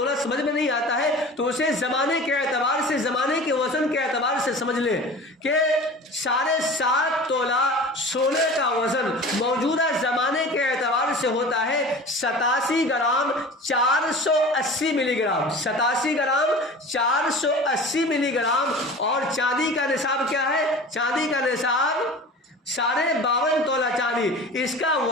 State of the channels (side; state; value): both; normal; correlation 0.38